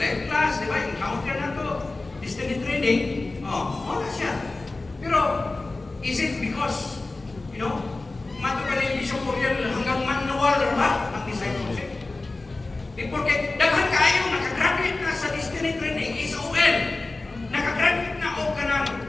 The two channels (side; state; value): right; quieter; 3.3 dB